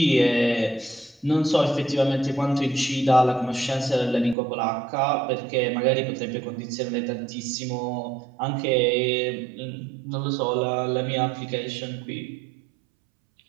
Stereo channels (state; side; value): drops out; left; at 4.4 s